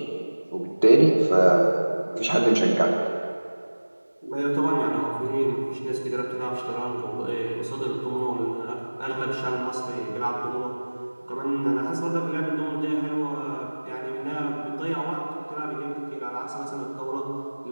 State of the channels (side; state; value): both; inverted; correlation -1.00